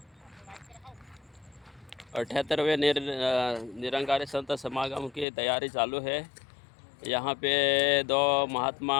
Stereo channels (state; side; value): drops out; right; at 5.2 s